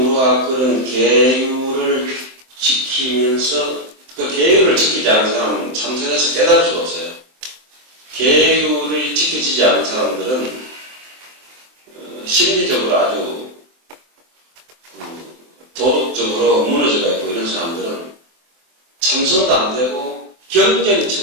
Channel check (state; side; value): late; left; 23 ms